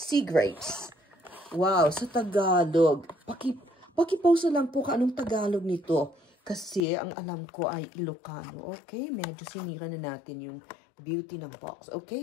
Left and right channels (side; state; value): right; drops out; at 6.8 s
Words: grapes. Wow. Sa Tagalog. Pakipausa lang po ka anong Tagalog nito. Kasi ang alam ko ay Ilocano. Okay, medyo sinira na natin yung beauty ng box.